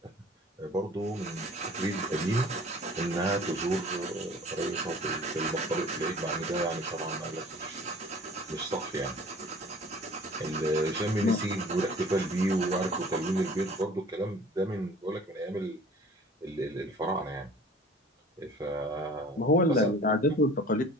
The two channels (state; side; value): normal; both; correlation 0.47